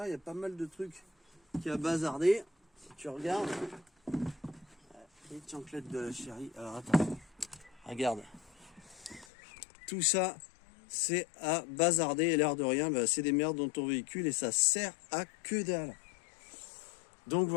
il y a pas mal de trucs qui a bazardé. Si tu regardes, les chanclettes de la chérie. Alors attends, regarde. Tout ça, c'est à bazarder, et l'air de rien, bah, c'est des merdes dans ton véhicule et ça sert à que dalle. Donc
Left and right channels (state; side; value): drops out; right; at 9.2 s